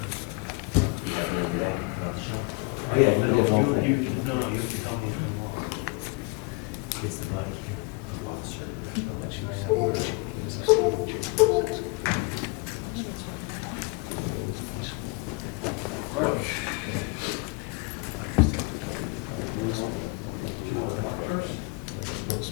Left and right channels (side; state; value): right; quieter; 27.7 dB